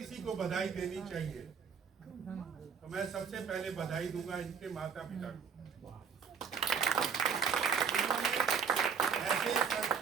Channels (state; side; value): quieter; left; 6.5 dB